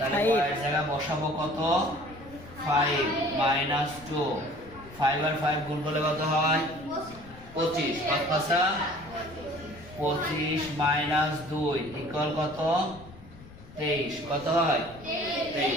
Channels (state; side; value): noise; left; rumble, 19 dB below the sound